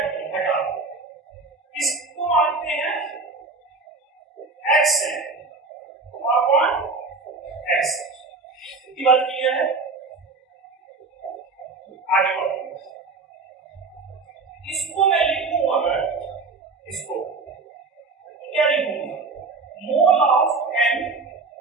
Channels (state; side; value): quieter; left; 4.0 dB